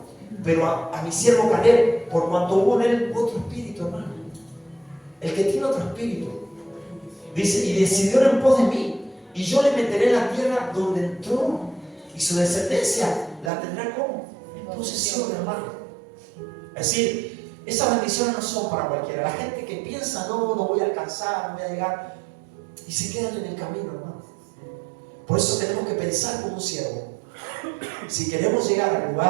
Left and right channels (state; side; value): drops out; left; at 13.5 s